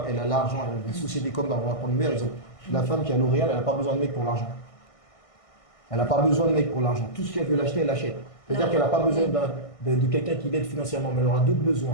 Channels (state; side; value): late; right; 1.6 ms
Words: elle a l'argent, elle a des sociétés comme, on va prendre le meilleur exemple, la femme qui a L'Oréal, elle n'a pas besoin de mec pour l'argent. Elle n'a pas besoin de mec pour l'argent. Tout ce qu'elle veut l'acheter, elle l'achète. C'est-à-dire qu'elle n'a pas besoin de quelqu'un qui l'aide financièrement, mais elle aura d'autres